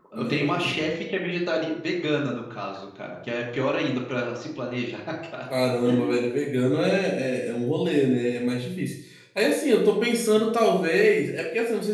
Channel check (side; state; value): both; identical; correlation 1.00